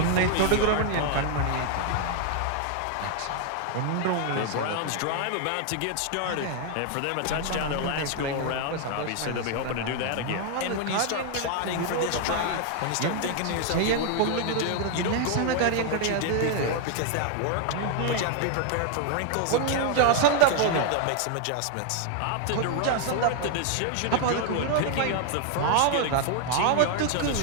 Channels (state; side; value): different; both; correlation 0.00